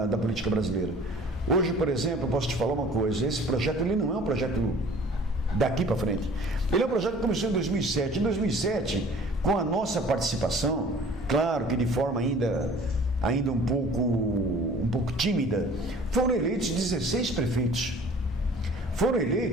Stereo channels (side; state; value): both; normal; correlation 0.49